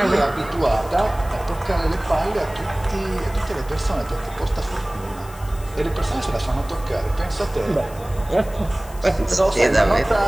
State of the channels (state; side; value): noise; left; hiss, 20 dB below the sound